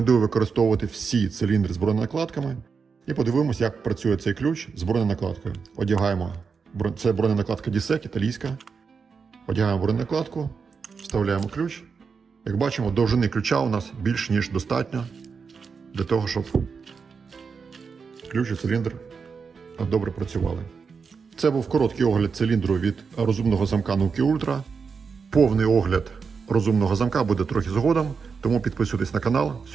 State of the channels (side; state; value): left; quieter; 5.5 dB